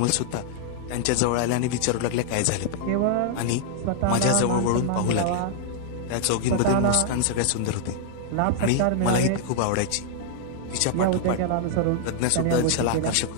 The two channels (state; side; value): different; both; correlation 0.00